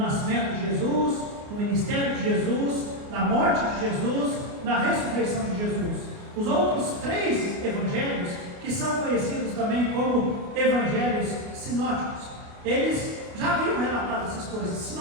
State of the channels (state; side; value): late; left; 29 ms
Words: de Jesus, no ministério de Jesus, na morte de Jesus, na ressurreição de Jesus. Os outros 3 evangelhos, que são conhecidos também como evangelhos sinóticos, eles já haviam relatado essas coisas.